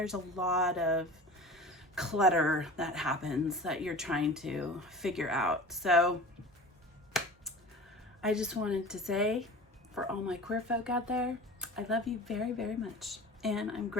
a lot of clutter that happens that you're trying to figure out. So I just wanted to say, for all my queer folk out there, I love you very, very much. And I'm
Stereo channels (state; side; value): normal; both; correlation 0.37